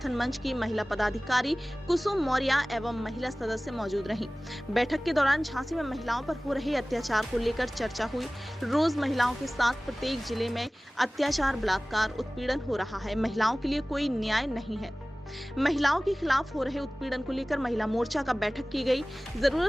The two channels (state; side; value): normal; both; correlation 0.98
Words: मंच की महिला पदाधिकारी कुसुम मौर्य एवं महिला सदस्य मौजूद रहीं। बैठक के दौरान झांसी में महिलाओं पर हो रहे अत्याचार को लेकर चर्चा हुई। रोज महिलाओं के साथ प्रत्येक जिले में अत्याचार, बलात्कार, उत्पीड़न हो रहा है। महिलाओं के लिए कोई न्याय नहीं है। महिलाओं के खिलाफ हो रहे उत्पीड़न को लेकर महिला मोर्चा का बैठक की गई।